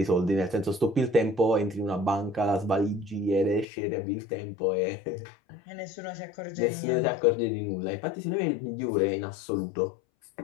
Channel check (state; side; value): drops out; right; at 3.7 s